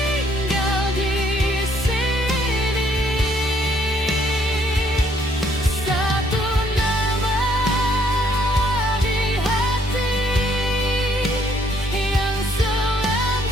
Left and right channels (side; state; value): both; normal; correlation 0.67